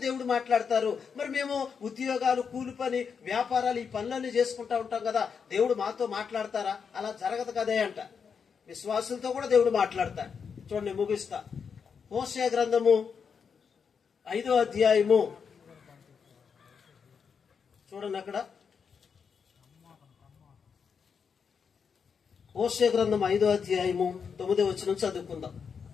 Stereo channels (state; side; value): quieter; right; 6.3 dB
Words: దేవుడు మాట్లాడతారు. మరి మేము ఉద్యోగాలు, కూలి పని, వ్యాపారాలు ఈ పనులన్నీ చేసుకుంటా ఉంటాం కదా, దేవుడు మాతో మాట్లాడతారా? అలా జరగదు కదే అంట. విశ్వాసులతో కూడా దేవుడు మాట్లాడతాడు. చూడండి ముగిస్తా. హోషేయ గ్రంథము 5వ అధ్యాయము చూడండి, అక్కడ హోషేయ గ్రంథం 5వ అధ్యాయము 9వ వచనం చదువుకుందాం.